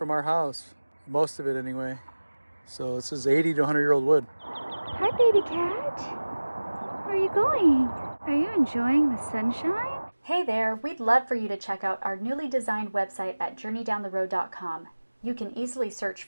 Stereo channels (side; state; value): both; inverted; correlation -1.00